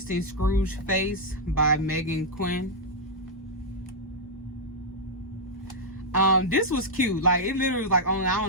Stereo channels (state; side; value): normal; both; correlation -0.04